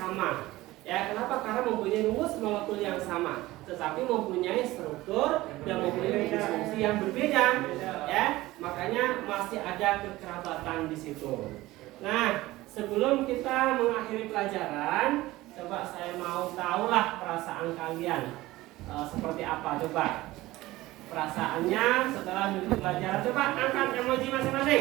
Ya, kenapa? Karena mempunyai rumus molekul yang sama, tetapi mempunyai struktur dan mempunyai gugus fungsi yang berbeda. Ya, makanya masih ada kekerabatan di situ. Nah, sebelum kita mengakhiri pelajaran, coba saya mau tahulah perasaan kalian seperti apa. Coba perasaannya setelah mengikuti pelajaran. Coba angkat emoji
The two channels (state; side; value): quieter; left; 18.0 dB